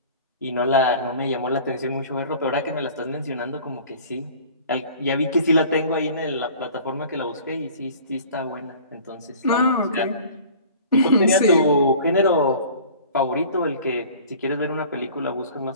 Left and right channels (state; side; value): inverted; both; correlation -0.45